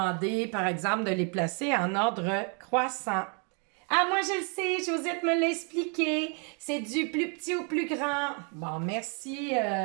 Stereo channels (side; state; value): left; quieter; 38.3 dB